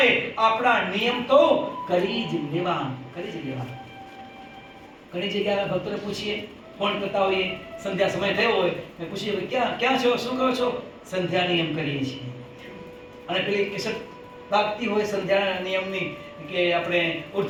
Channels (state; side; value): identical; both; correlation 1.00